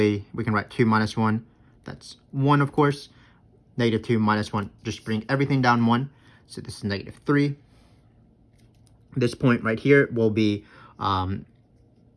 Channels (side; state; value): both; identical; correlation 1.00